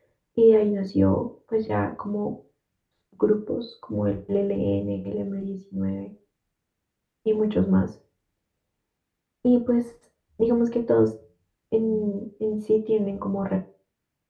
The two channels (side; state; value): both; identical; correlation 1.00